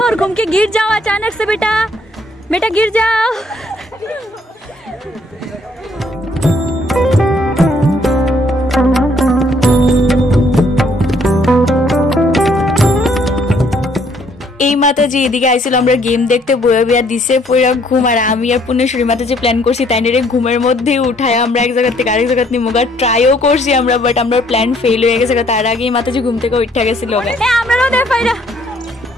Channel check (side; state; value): both; normal; correlation 0.65